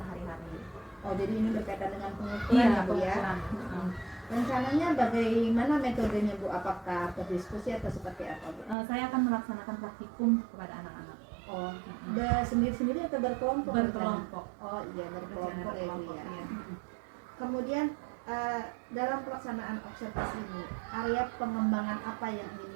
Oh, jadi ini berkaitan dengan pengukuran Iya, ya Bu ya. pengukuran. Rencananya bagaimana metodenya Bu? Apakah berdiskusi atau seperti apa Bu? Saya akan melaksanakan praktikum kepada anak-anak. Oh, sendiri-sendiri atau berkelompok? Berkelompok. Oh iya, berkelompok ya Bu ya. Iya. Kemudian dalam pelaksanaan observasi ini, area pengembangan apa yang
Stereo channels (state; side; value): drops out; left; at 8.8 s